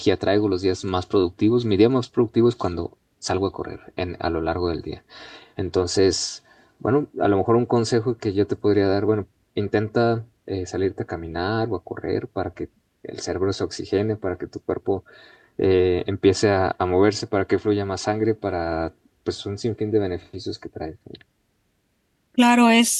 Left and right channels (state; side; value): identical; both; correlation 1.00